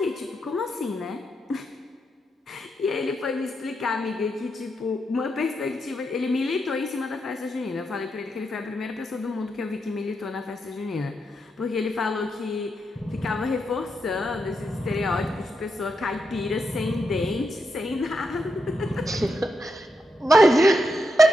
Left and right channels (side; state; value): both; normal; correlation 0.83